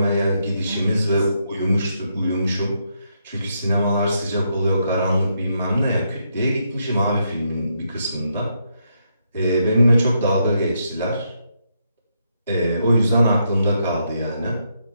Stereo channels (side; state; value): both; inverted; correlation -0.79